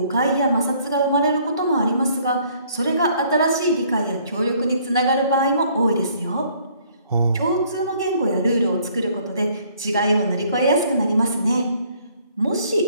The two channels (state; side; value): inverted; both; correlation -0.61